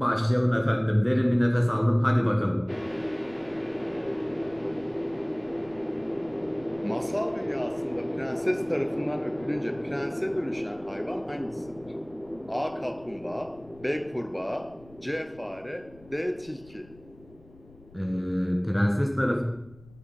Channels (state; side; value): noise; left; rumble, 24 dB below the sound